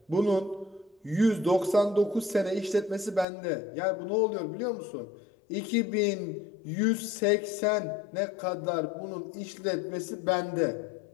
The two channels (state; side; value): drops out; right; at 3.2 s